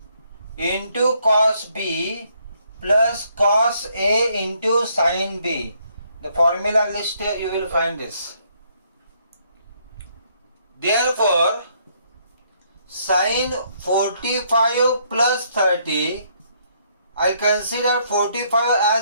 into cos B plus cos A into sin B. The formula list you will find this. Therefore sin 45 plus 30, I consider 45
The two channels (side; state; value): both; inverted; correlation -0.70